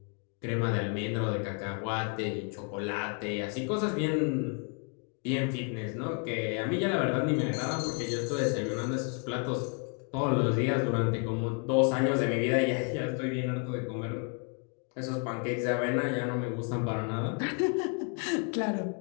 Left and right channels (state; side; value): quieter; right; 38.3 dB